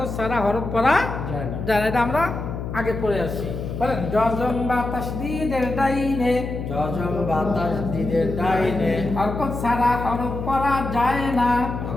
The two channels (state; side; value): noise; left; hum, 6 dB below the sound